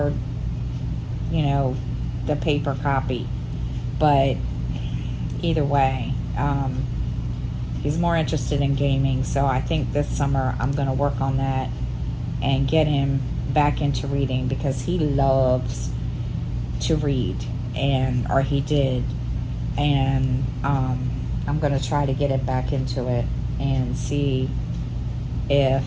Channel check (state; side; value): identical; both; correlation 1.00